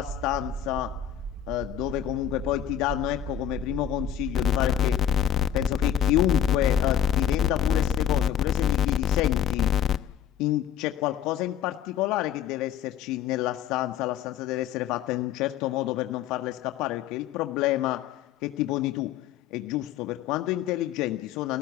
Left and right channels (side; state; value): right; quieter; 10.1 dB